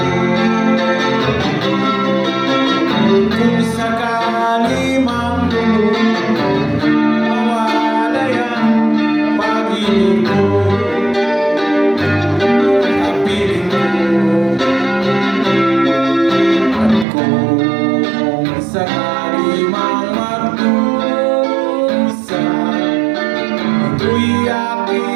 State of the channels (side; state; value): left; drops out; at 17.1 s